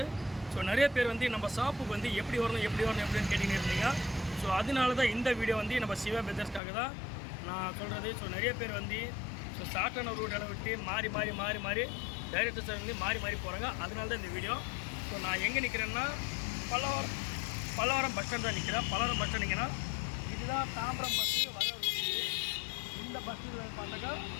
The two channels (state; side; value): drops out; right; at 6.6 s